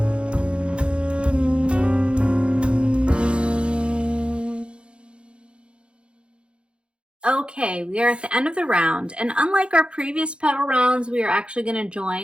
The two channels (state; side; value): late; left; 0.057 ms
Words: Okay, we are at the end of the round, and unlike our previous petal rounds, we are actually going to